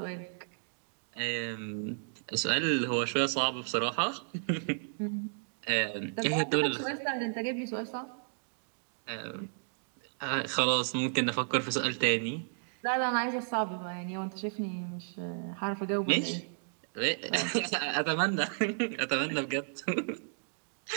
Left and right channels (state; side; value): silent; left; digital silence